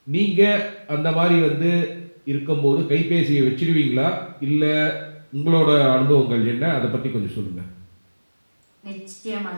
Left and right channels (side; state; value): both; inverted; correlation -1.00